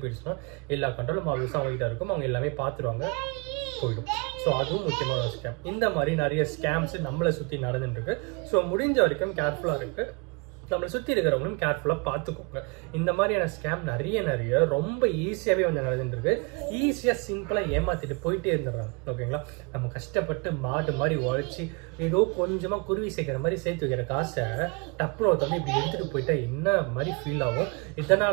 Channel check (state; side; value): quieter; left; 31.6 dB